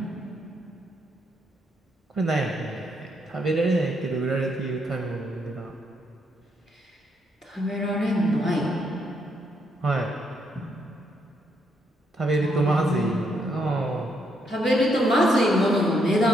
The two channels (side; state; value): both; normal; correlation 0.75